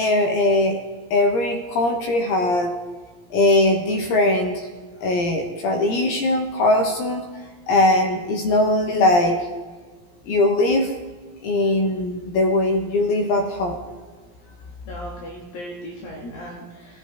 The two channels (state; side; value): late; right; 17 ms